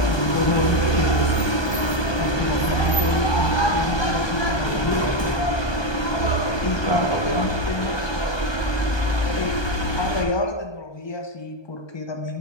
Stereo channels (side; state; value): right; late; 1.2 ms